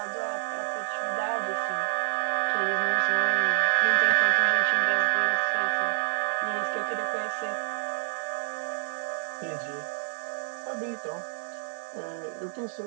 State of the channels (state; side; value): silent; left; 59 dB below the other